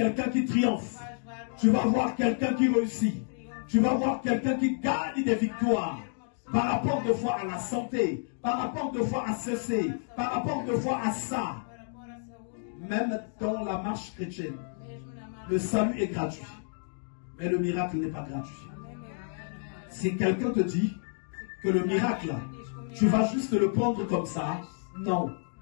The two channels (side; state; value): right; silent; digital silence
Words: qui triomphe. Tu vas voir quelqu'un qui réussit. Tu vas voir quelqu'un qui gagne des victoires. Par rapport de fois à la santé, par rapport de fois à ceci, par rapport de fois à ça. Même dans la marche chrétienne, le salut est gratuit. Mais le miracle n'est pas gratuit. Si quelqu'un te dit que le miracle, tu vas juste le prendre comme ça, non.